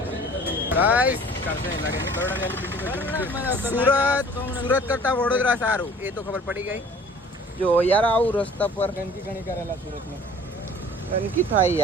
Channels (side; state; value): both; normal; correlation 0.49